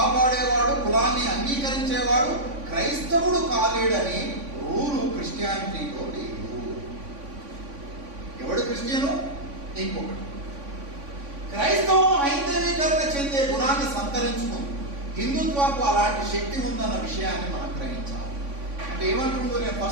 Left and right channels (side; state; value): left; late; 3.5 ms